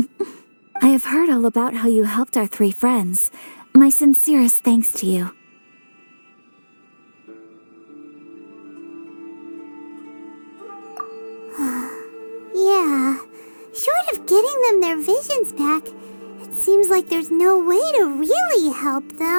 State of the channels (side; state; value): both; inverted; correlation -1.00